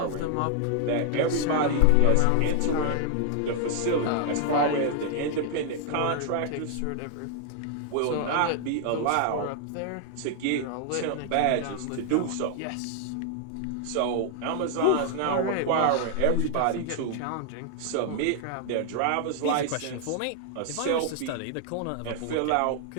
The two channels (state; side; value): different; both; correlation 0.00